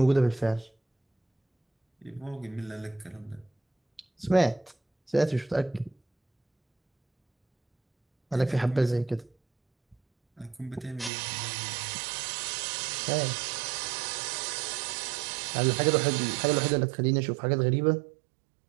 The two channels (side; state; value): left; drops out; at 11.1 s